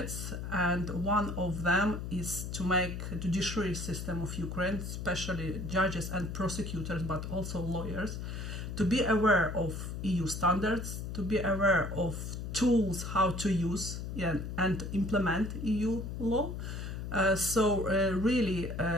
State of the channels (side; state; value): left; noise; hum, 6 dB below the sound